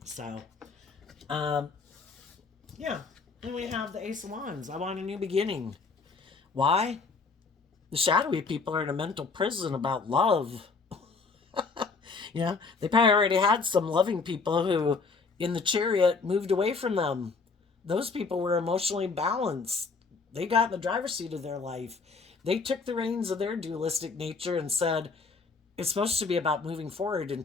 So, um, yeah. And we have the Ace of Wands. I want a new beginning. Why? The shadowy people are in a mental prison about love. You know, they probably already had some loving people who, in the Chariot, moved away from them. Those people were emotionally balanced. They got in the driver's seat of their life. They took the reins of their dualistic nature and said, it's supposed to be about moving forward in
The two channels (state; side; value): quieter; right; 4.5 dB